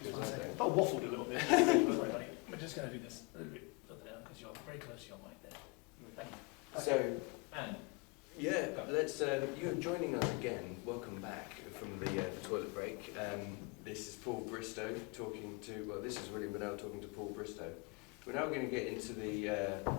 one I second. don't. But waffled a little bit. Sorry, buddy. We're just going to do this a little bit further down because you're very close to your mic there. Thank you. So, And yeah, let's. You're joining us again. Welcome back from the toilet break. This is Paul Bristow talking to. Well, this is William Bennell talking to Paul Bristow. We're now going to get into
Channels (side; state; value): right; quieter; 28.2 dB